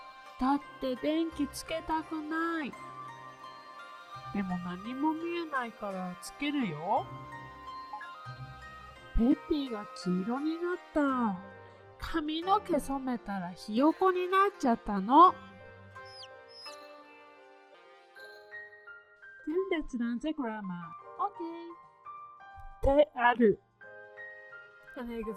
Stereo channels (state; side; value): identical; both; correlation 1.00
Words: だって電気つけたくない。でも何も見えないからつけるよ。ペッピーが黄色になった。髪の毛染めたらひよこになっちゃったの。Then let's learn the grammar. Okay. である。An